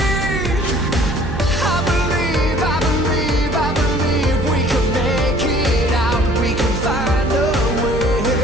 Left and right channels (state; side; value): noise; right; hum, 6 dB below the sound